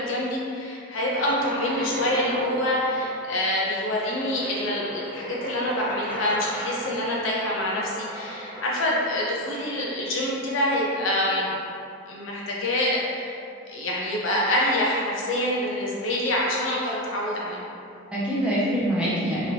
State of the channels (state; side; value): normal; both; correlation 0.08